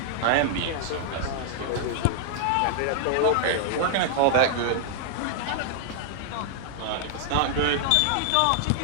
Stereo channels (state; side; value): different; both; correlation -0.01